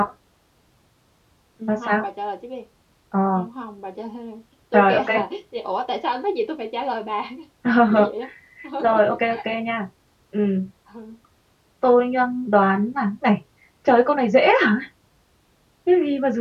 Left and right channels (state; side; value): identical; both; correlation 1.00